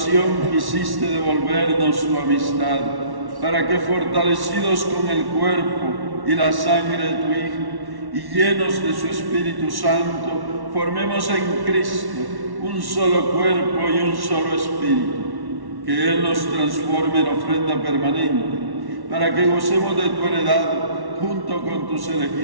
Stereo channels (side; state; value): left; late; 1.1 ms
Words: quisiste devolvernos tu amistad, para que fortalecidos con el cuerpo y la sangre de tu Hijo y llenos de su Espíritu Santo, formemos en Cristo un solo cuerpo y un solo espíritu. Que Él nos transforme en ofrenda permanente, para que gocemos de tu heredad junto con tus